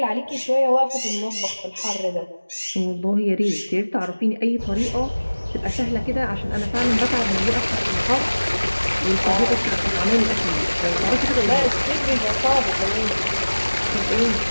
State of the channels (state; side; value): inverted; both; correlation -1.00